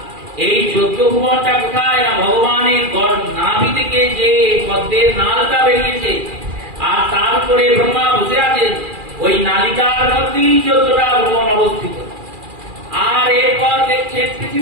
এই 14 ভুবনটা কোথায়? না ভগবানের রক্তের নালটা বেরিয়েছে, আর তার উপরে ব্রহ্মা বসে আছেন। ওই নালিকার মধ্যেই 14টা ভুবন অবস্থিত। আর এরপর দেখছেন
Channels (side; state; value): left; late; 2.4 ms